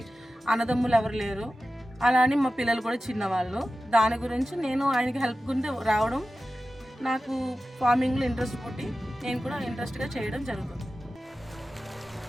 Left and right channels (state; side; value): normal; both; correlation 0.94